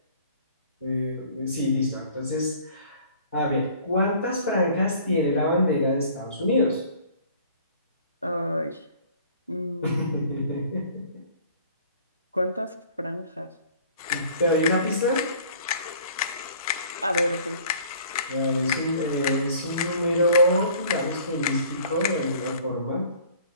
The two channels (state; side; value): inverted; both; correlation -0.52